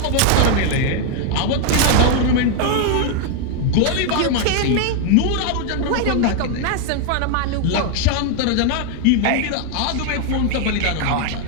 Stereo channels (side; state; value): both; different; correlation 0.00